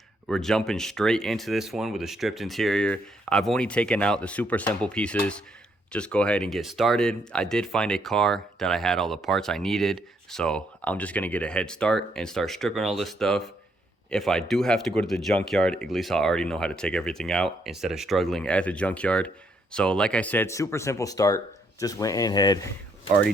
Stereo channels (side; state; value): both; normal; correlation 0.73